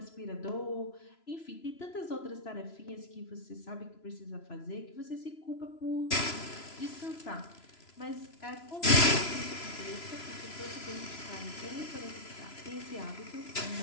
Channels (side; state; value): right; late; 3.0 ms